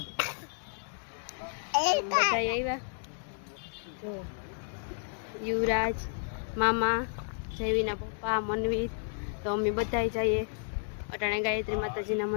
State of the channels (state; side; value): silent; right; digital silence